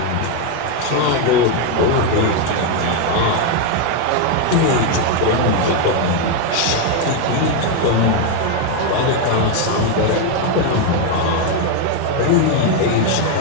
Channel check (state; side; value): different; both; correlation 0.01